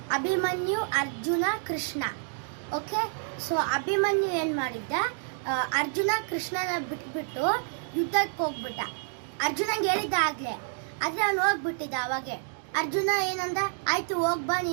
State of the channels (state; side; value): silent; left; 59 dB below the other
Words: ಅಭಿಮನ್ಯು ಅರ್ಜುನ ಕೃಷ್ಣ. ಓಕೆ, ಸೊ ಅಭಿಮನ್ಯು ಏನು ಮಾಡಿದ್ದ, ಅರ್ಜುನ ಕೃಷ್ಣನ ಬಿಟ್ಬಿಟ್ಟು ಯುದ್ಧಕ್ಕೆ ಹೋಗ್ಬಿಟ್ಟ. ಅರ್ಜುನಂಗೆ ಹೇಳಿದ್ದ ಆಗಲೇ, ಆದರೆ ಅವನು ಹೋಗ್ಬಿಟ್ಟಿದ್ದ. ಅವಾಗೆ ಅರ್ಜುನ ಏನಂದ, ಆಯಿತು ಹೋಗ್ಬಾ